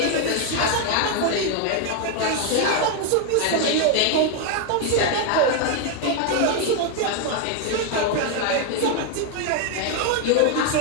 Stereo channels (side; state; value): both; different; correlation 0.01